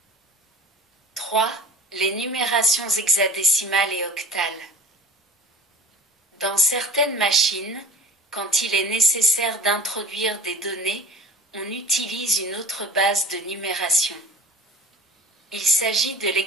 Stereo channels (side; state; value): both; normal; correlation 0.41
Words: 3. Les numérations hexadécimales et octales. Dans certaines machines, quand il est nécessaire d'introduire des données, on utilise une autre base de numération. Il s'agit de